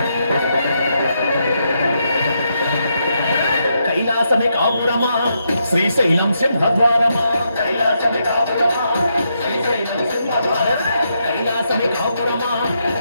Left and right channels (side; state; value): both; inverted; correlation -0.80